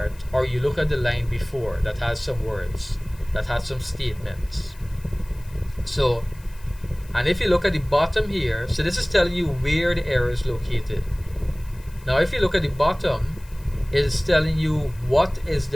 or you look at the line before that has some words, that has some statements. So, and if you look at the bottom here, so this is telling you where the error is located. Now if you look at the bottom, it is telling you what is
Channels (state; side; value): noise; left; hiss, 26 dB below the sound